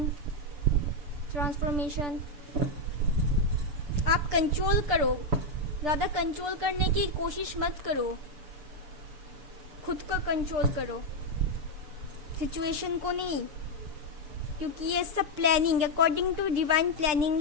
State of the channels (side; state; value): left; late; 7.0 ms